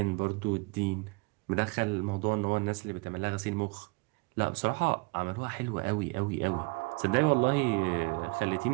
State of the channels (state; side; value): quieter; left; 27.7 dB